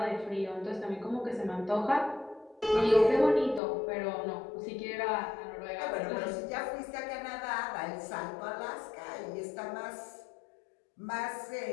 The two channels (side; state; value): right; drops out; at 3.6 s